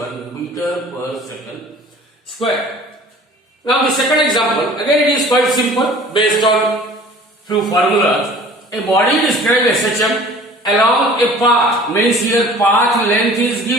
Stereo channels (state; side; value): normal; both; correlation 0.47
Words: meter per second square. Now the second example, again it is quite simple based on few formulas. A body described as such along a path, means here path length is